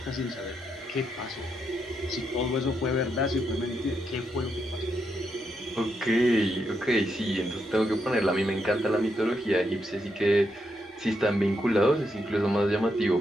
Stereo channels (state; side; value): normal; both; correlation 0.81